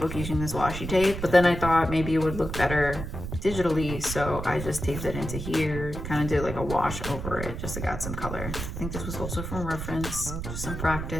using this washi tape, but then I thought maybe it would look better digitally, so I just taped it into here, kind of did like a wash over it just to add some color. I think this was also from reference, just some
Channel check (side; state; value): right; noise; rumble, 6 dB below the sound